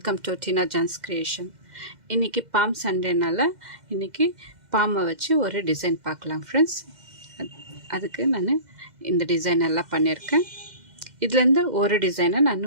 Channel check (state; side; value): late; left; 2.1 ms